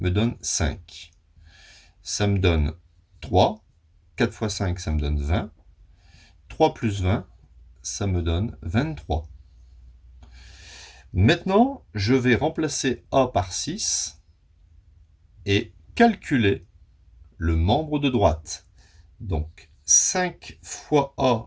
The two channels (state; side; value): identical; both; correlation 1.00